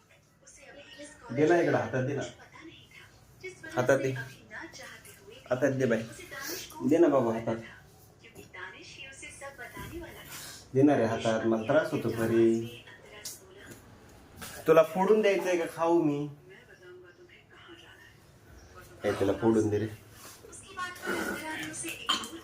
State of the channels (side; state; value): both; identical; correlation 1.00